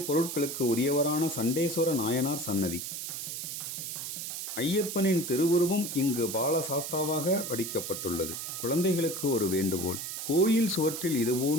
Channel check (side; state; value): right; noise; hiss, 6 dB below the sound